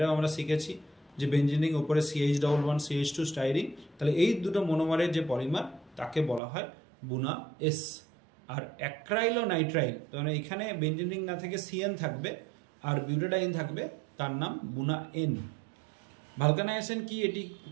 আমরা শিখেছি যে বেঞ্জিনিং ওপরে CH11 CH2 স্টাইরিন। তাহলে এই দুটো মনোমারের যে পলিমার তাকে বলা হয় বুনা এস। আর অ্যাক্রাইলোনাইট্রাইল, মানে এখানে বেঞ্জিনিং না থেকে CN থাকবে আর বিউটাডাইন থাকবে, তার নাম বুনা এন। ভালকানাইজেশন কি, এটি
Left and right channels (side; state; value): left; drops out; at 6.4 s